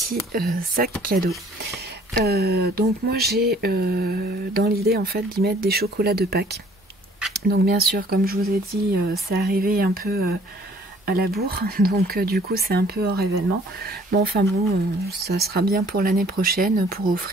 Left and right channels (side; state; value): both; normal; correlation 0.57